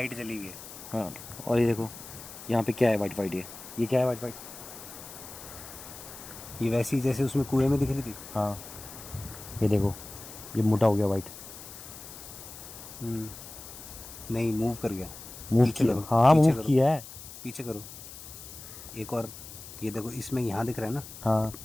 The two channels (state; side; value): noise; left; hiss, 14 dB below the sound